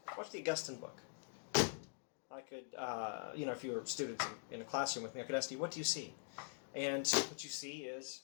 Watch the Augustine book. I could, if you were students in a classroom with me, I could ask you, what do you see? And what you see is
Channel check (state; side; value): silent; right; digital silence